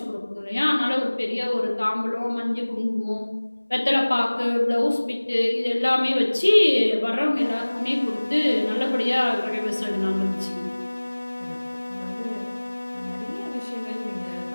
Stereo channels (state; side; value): inverted; both; correlation -1.00